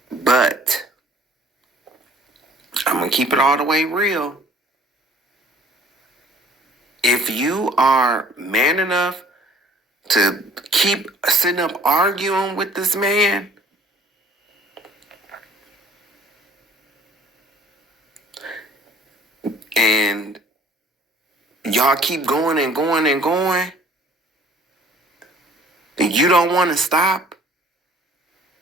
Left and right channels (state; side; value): normal; both; correlation 0.54